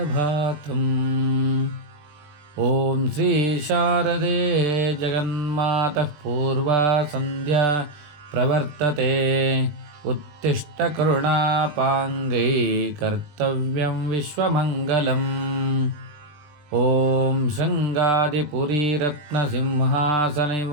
ఓం శ్రీ శారదే జగన్మాతః పూర్వా సంధ్యా ప్రవర్తతే. ఉత్తిష్ట కరుణాపాంగై కర్తవ్యం విశ్వమంగళం. ఓం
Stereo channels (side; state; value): left; late; 20 ms